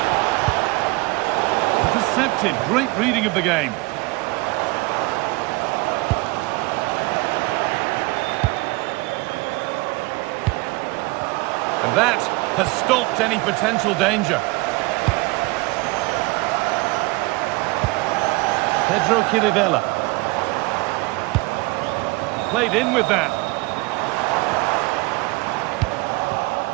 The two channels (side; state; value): left; quieter; 24.1 dB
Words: Intercepted. Great reading of the game. And that has stopped any potential danger. Pedro Chirivella. Played in with that.